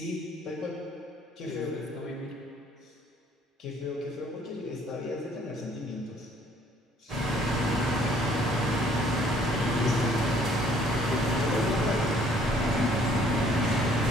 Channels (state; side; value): normal; both; correlation 0.60